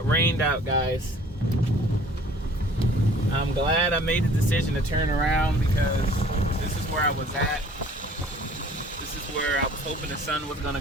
rained out, guys. I'm glad I made the decision to turn around because this is where I was at. This is where I was hoping the sun was gonna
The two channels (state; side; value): normal; both; correlation 0.52